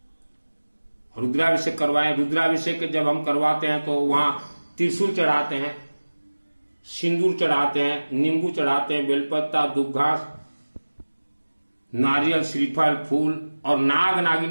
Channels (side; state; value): both; inverted; correlation -1.00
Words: रुद्राभिषेक करवाएं। रुद्राभिषेक जब हम करवाते हैं तो वहां त्रिशूल चढ़ाते हैं, सिंदूर चढ़ाते हैं, नींबू चढ़ाते हैं, बेलपत्ता, दूब घास, नारियल, श्रीफल, फूल और नाग